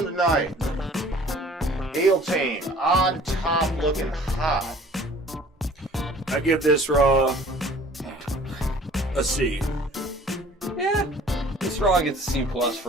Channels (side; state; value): both; normal; correlation 0.51